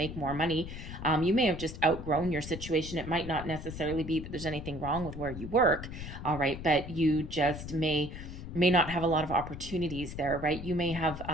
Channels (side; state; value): left; noise; rumble, 10 dB below the sound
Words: more money, you may have just outgrown your situation. It might not necessarily be that there's anything wrong with where you work, all right, but you just may not have a lot of opportunities there, right? You may have